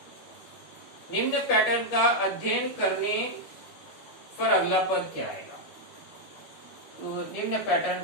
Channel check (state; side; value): late; right; 12 ms